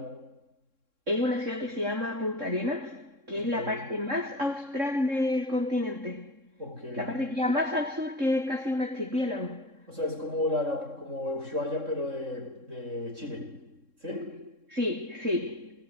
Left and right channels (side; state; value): left; late; 3.7 ms